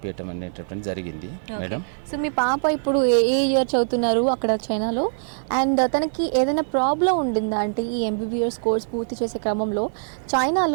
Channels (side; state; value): left; silent; 63 dB below the other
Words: అనేటటువంటి జరిగింది మేడం. సో మీ పాప ఇప్పుడు ఏ ఇయర్ చదువుతున్నారు అక్కడ చైనాలో? అండ్ తనకి ఏదైనా ప్రాబ్లం ఉండిందా అంటే ఈ ఎంబీబీఎస్ కోర్స్ పూర్తి చేసే క్రమంలో